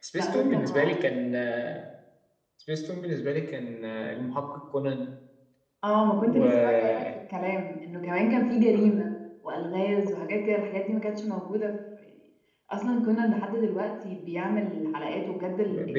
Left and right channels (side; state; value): both; identical; correlation 1.00